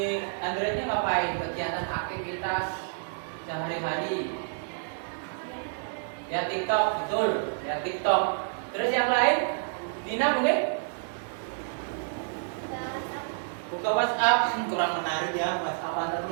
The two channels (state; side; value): silent; left; digital silence